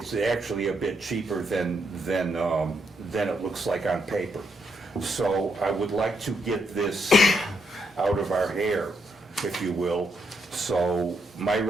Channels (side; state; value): both; normal; correlation 0.78